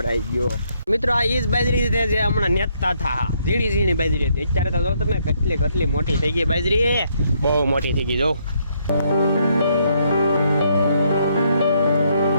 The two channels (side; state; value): both; inverted; correlation -0.72